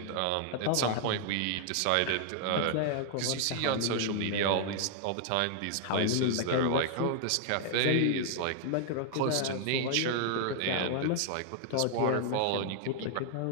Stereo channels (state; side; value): different; both; correlation 0.00